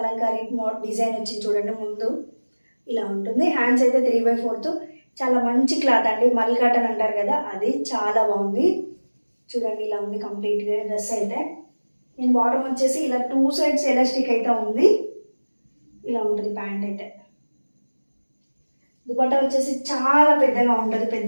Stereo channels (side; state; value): both; inverted; correlation -1.00